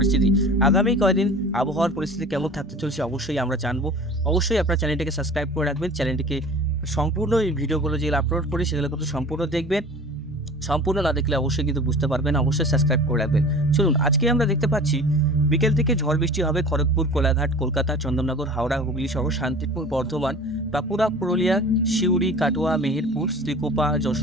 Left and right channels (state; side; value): normal; both; correlation 0.41